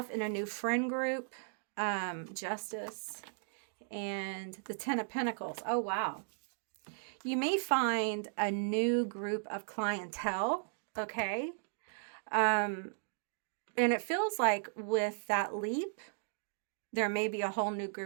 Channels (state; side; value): silent; left; digital silence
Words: in a new friend group, Justice, and the Ten of Pentacles. Oh, wow. You may find a new group of clientele, okay? And it feels like with that leap, there may be a whole new